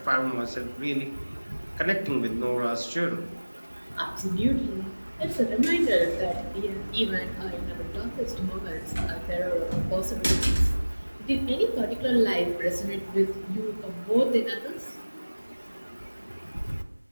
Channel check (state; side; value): inverted; both; correlation -1.00